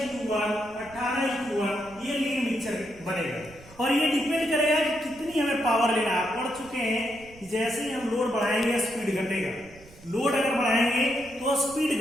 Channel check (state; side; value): noise; right; rumble, 23 dB below the sound